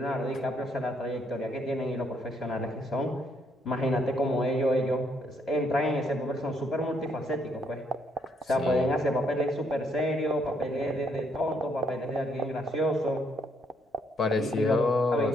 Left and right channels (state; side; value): normal; both; correlation 0.71